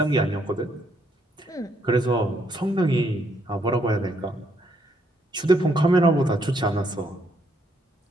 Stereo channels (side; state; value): both; normal; correlation 0.72